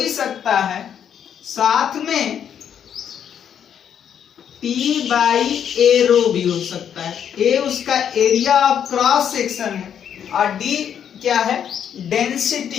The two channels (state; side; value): quieter; right; 8.7 dB